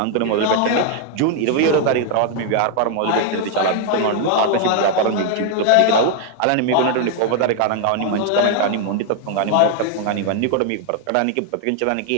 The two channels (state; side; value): different; both; correlation 0.00